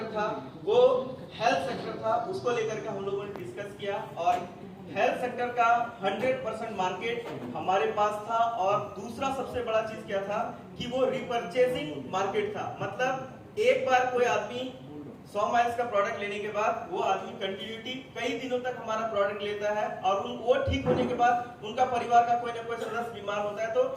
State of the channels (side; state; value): both; identical; correlation 1.00